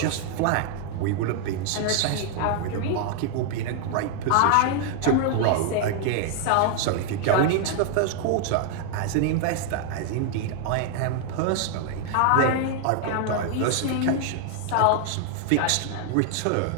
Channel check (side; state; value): both; different; correlation 0.00